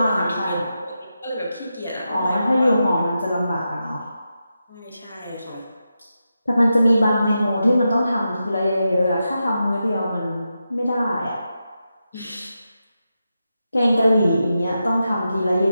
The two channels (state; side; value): inverted; both; correlation -0.88